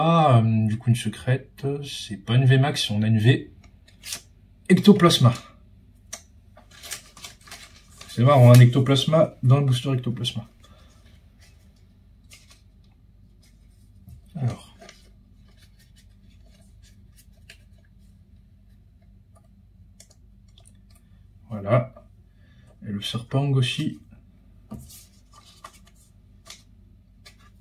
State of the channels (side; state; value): both; identical; correlation 1.00